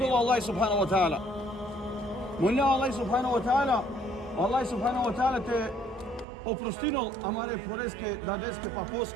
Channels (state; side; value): drops out; left; at 6.2 s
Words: Allah subhanahu wa ta'ala. Molim Allah subhanahu wa ta'ala, Allah subhanahu wa ta'ala te oprostinol amare poreske, dadeske,